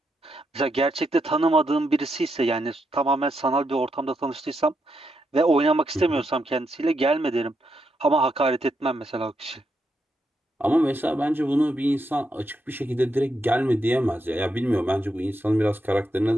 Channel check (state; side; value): normal; both; correlation 0.82